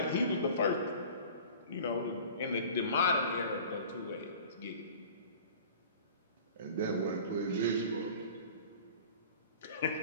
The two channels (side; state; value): both; inverted; correlation -0.42